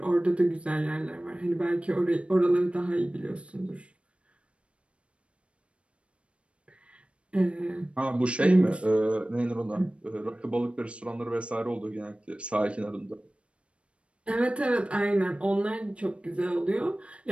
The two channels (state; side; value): late; left; 0.060 ms